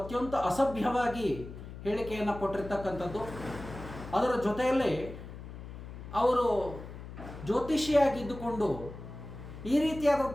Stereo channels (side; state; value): left; noise; hum, 12 dB below the sound